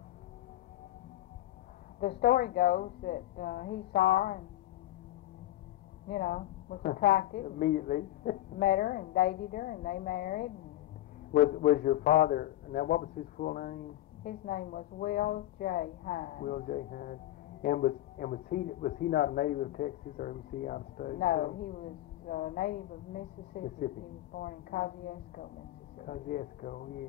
the story goes that he saw her and was attracted. Immediately. Met her and dated her, and they married. Was your father, now what was his full name? His name was Will J. Hines. Will J. Hines. And was he not a native of Texas, or was he out of state? No, he was a native of Mississippi. He was born in Kosciuszko, Mississippi. Kosciuszko,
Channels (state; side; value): quieter; right; 14.6 dB